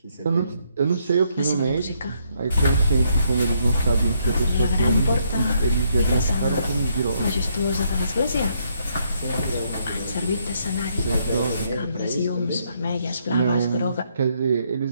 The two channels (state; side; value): inverted; both; correlation -0.73